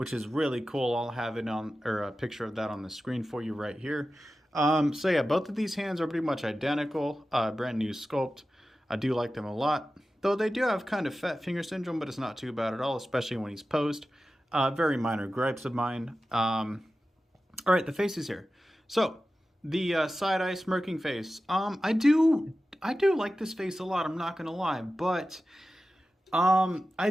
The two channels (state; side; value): normal; both; correlation 0.94